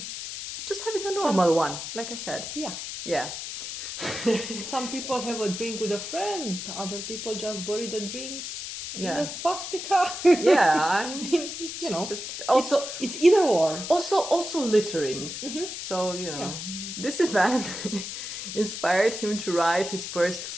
just having a normal one, like I said. Yeah. Some people have a drink with a friend, other people just bury the drinks in a swastika. Yeah, just also it's either or. Also littering. So this event inspired him to write his first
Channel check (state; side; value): noise; left; hiss, 7 dB below the sound